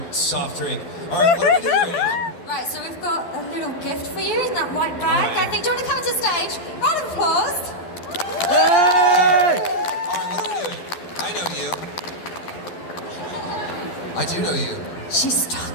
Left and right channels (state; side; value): late; right; 12 ms